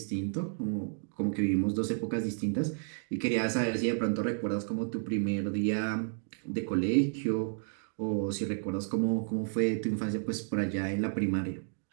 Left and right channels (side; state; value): left; silent; digital silence